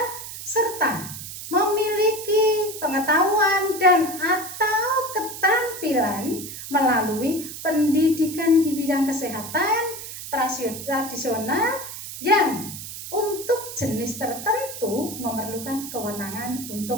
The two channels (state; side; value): noise; right; hiss, 10 dB below the sound